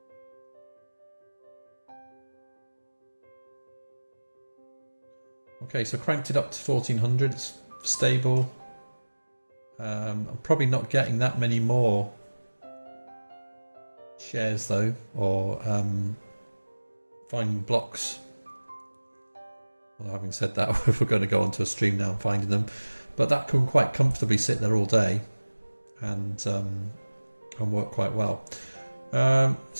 Okay, so cranked it up to 1400, it's stable. I'm probably not getting that many more shares though, or finding blocks. Well, having said that, if we're going to go onto a stream now and finding them, but that can quite comfortably sit there all day and and work quite well.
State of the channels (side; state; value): both; inverted; correlation -1.00